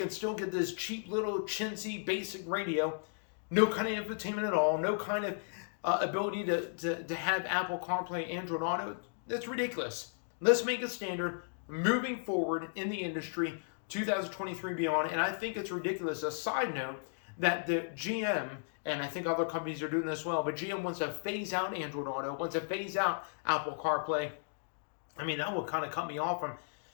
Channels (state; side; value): silent; right; digital silence